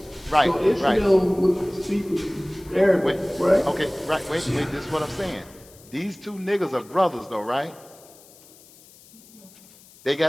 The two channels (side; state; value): left; noise; hiss, 24 dB below the sound